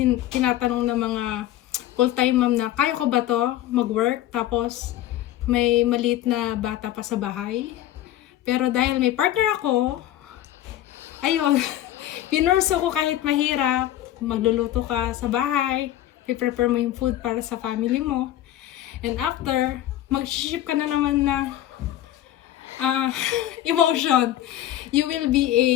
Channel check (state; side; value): quieter; right; 13.3 dB